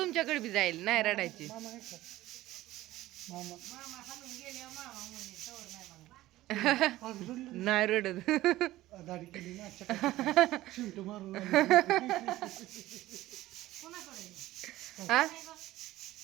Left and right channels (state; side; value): quieter; left; 16.2 dB